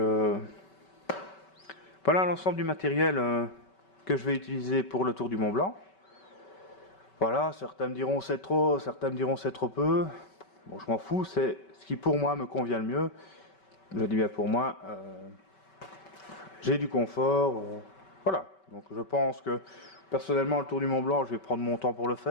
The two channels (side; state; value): right; late; 5.2 ms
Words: voilà l'ensemble du matériel que je vais utiliser pour le Tour du Mont Blanc. Voilà, certains me diront c'est trop, certains me diront c'est trop peu. Bon, je m'en fous, c'est ce qui pour moi me convient le mieux. Je dis bien pour moi, j'ai du confort. Voilà, donc je pense que personnellement le Tour du Mont Blanc, je vais prendre mon temps pour le